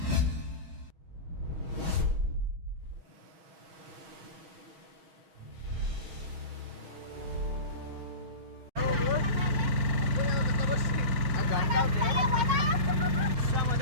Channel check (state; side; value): late; left; 6.6 ms